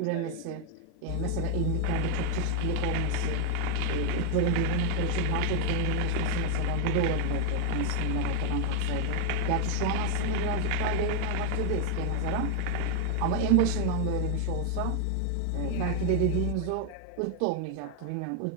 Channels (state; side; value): different; both; correlation 0.01